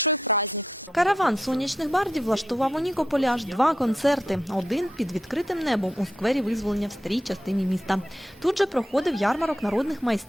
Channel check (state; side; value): normal; both; correlation 0.84